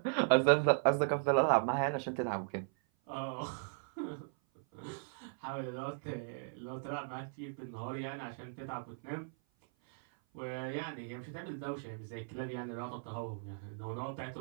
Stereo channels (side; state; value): left; silent; 53 dB below the other